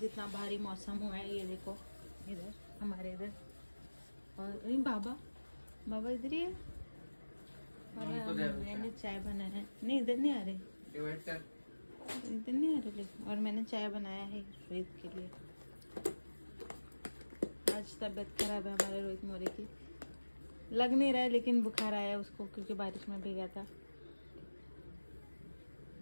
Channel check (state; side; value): inverted; both; correlation -1.00